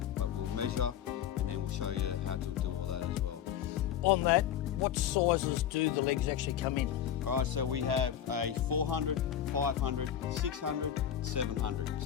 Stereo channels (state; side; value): quieter; right; 10.0 dB